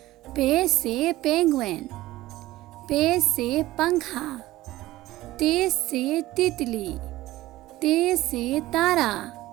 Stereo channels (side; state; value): left; quieter; 16.9 dB